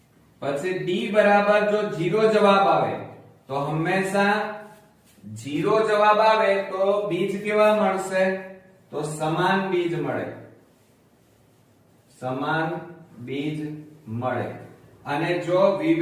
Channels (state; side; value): identical; both; correlation 1.00